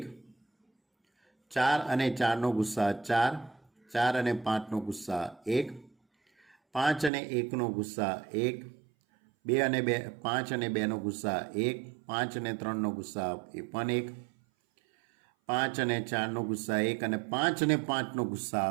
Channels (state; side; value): drops out; left; at 7.1 s